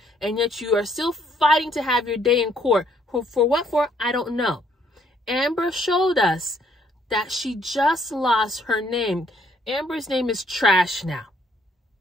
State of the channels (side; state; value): both; normal; correlation 0.67